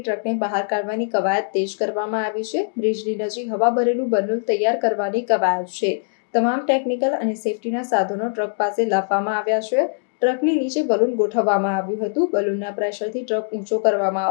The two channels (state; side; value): silent; right; digital silence